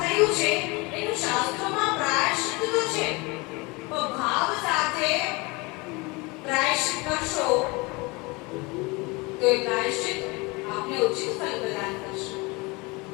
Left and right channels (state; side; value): quieter; right; 25.7 dB